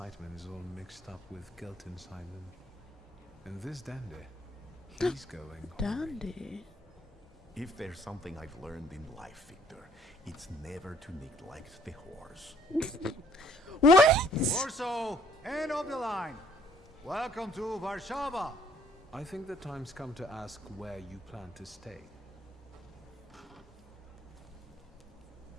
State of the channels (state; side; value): normal; both; correlation 0.62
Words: is all mixed up with guilt inside them. And this dandy, he's going Dandy. If there's something I've learned in life, Victor, it's never to neglect the horse. What? Warsaw, end of the line. Welcome to Warsaw. I think the time's come to ask where you plan to stay.